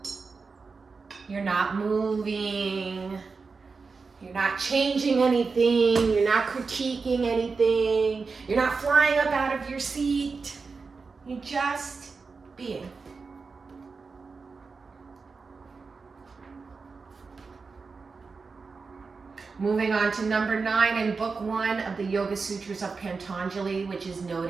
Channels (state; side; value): quieter; left; 4.6 dB